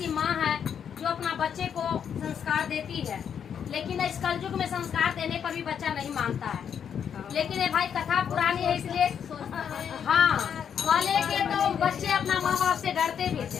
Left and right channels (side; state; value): right; quieter; 8.0 dB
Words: माँ है जो अपना बच्चे को संस्कार देती है, लेकिन इस कलयुग में संस्कार देने पर भी बच्चा नहीं मानता है। लेकिन ये भाई कथा पुरानी है, इसलिए हाँ वाले के तो बच्चे अपना माँ बाप से डरते भी